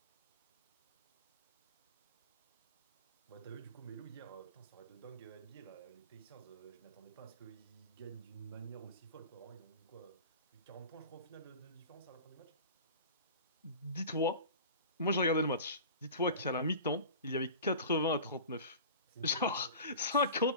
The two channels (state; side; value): inverted; both; correlation -0.36